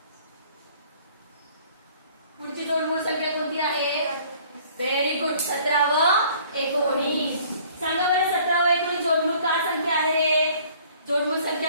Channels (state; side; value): inverted; both; correlation -0.55